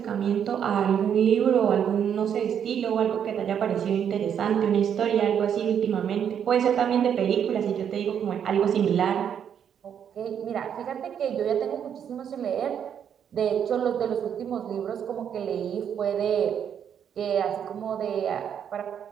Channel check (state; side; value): quieter; left; 8.5 dB